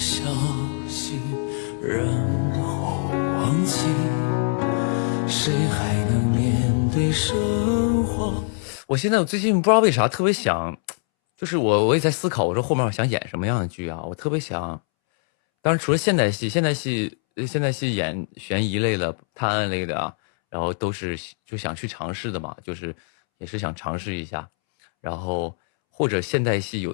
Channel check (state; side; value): silent; right; 63 dB below the other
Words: 息，然后忘记，谁还能面对生活？我最近不知道为啥特别想，就是我也在思考，我说后面我想演什么样的剧啊？我特别想，当然除了现代戏演悬疑类的、探案类的啊，然后都是就想去尝试的嘛，就是也是想尝试一下，然后或者现代戏